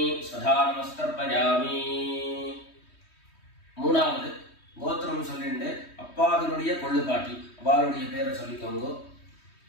स्वधा नमस्तर्पयामि மூணாவது கோத்திரம் சொல்லிட்டு அப்பாவினுடைய கொள்ளுப்பாட்டி அவளுடைய பேரை சொல்லிக்கோங்க.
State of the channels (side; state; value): right; late; 3.2 ms